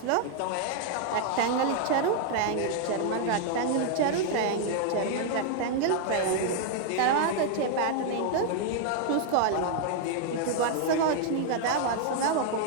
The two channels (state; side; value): different; both; correlation 0.00